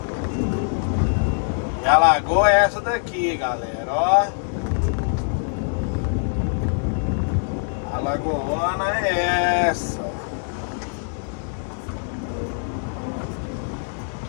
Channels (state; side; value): silent; right; 63 dB below the other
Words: E a lagoa é essa daqui, galera, ó. A lagoona é essa.